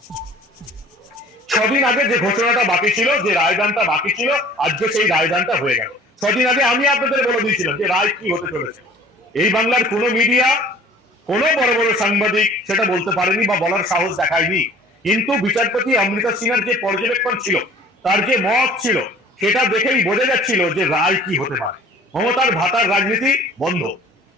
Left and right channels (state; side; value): normal; both; correlation 0.48